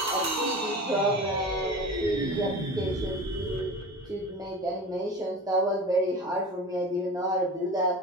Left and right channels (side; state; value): both; normal; correlation 0.33